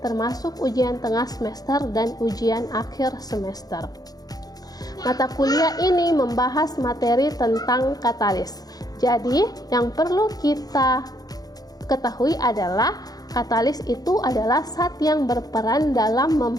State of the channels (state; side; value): late; right; 0.18 ms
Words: termasuk ujian tengah semester dan ujian akhir semester. Mata kuliah ini membahas materi tentang katalis. Jadi, yang perlu kita ketahui adalah katalis itu adalah zat yang berperan dalam